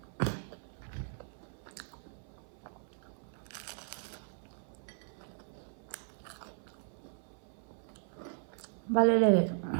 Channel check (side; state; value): left; silent; 53 dB below the other